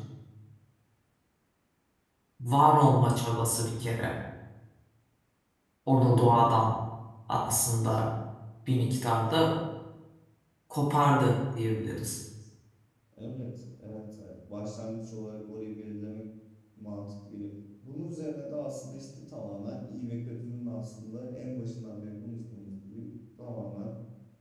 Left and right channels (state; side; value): identical; both; correlation 1.00